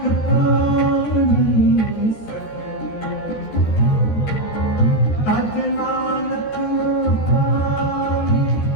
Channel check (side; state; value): right; late; 14 ms